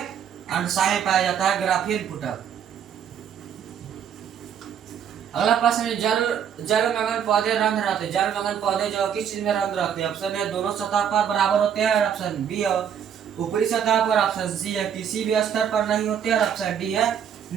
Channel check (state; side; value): quieter; left; 8.4 dB